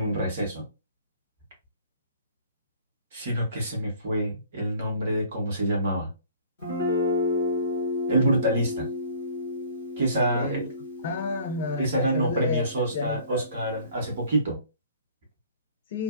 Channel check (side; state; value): both; inverted; correlation -0.52